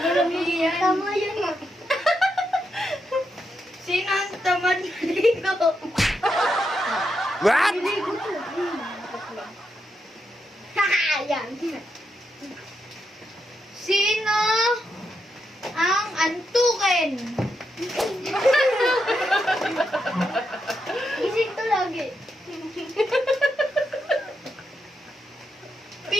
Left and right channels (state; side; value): normal; both; correlation 0.83